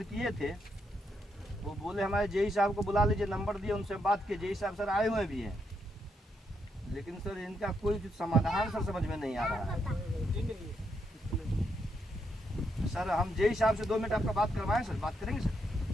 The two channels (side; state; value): both; normal; correlation 0.79